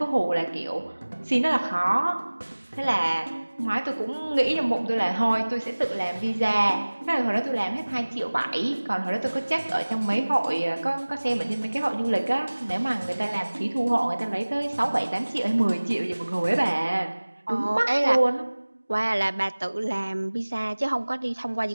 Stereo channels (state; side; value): inverted; both; correlation -1.00